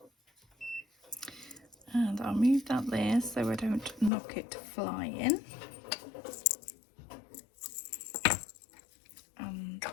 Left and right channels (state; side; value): drops out; right; at 4.1 s